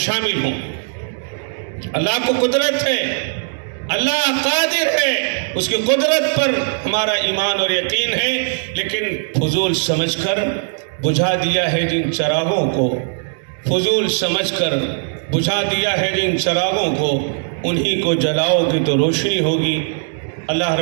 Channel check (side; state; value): left; silent; digital silence